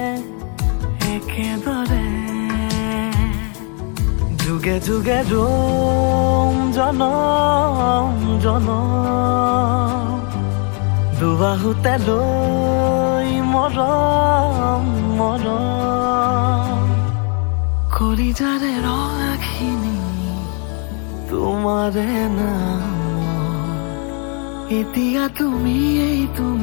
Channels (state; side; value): quieter; right; 38.0 dB